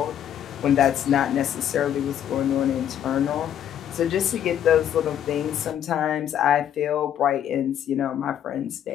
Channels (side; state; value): right; quieter; 10.1 dB